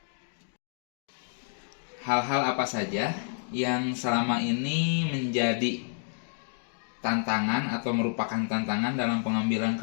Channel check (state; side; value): silent; right; digital silence